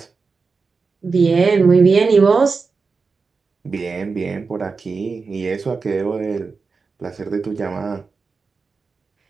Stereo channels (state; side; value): quieter; left; 4.6 dB